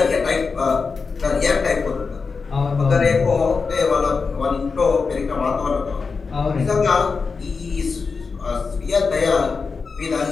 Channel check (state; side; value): quieter; right; 4.8 dB